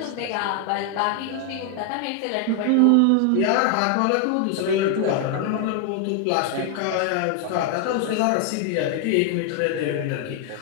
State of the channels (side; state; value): both; different; correlation 0.00